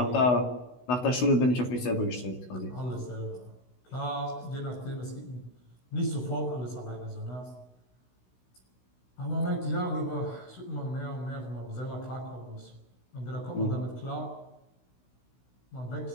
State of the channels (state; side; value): late; right; 16 ms